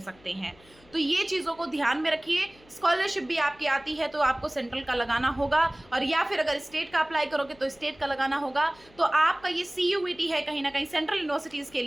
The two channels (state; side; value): noise; left; hum, 27 dB below the sound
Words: हैं। तो ये चीज़ों को ध्यान में रखिए। स्कॉलरशिप भी आपकी आती है तो आपको सेंट्रल का लगाना होगा, और या फिर अगर स्टेट का अप्लाई करोगे तो स्टेट का लगाना होगा। तो आपका ये CUET है, कहीं ना कहीं सेंट्रल यूनिवर्सिटीज़ के